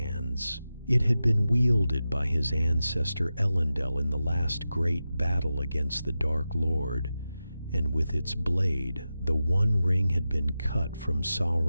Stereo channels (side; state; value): both; inverted; correlation -0.92